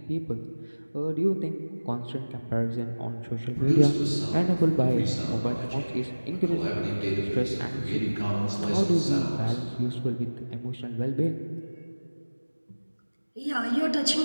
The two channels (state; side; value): inverted; both; correlation -1.00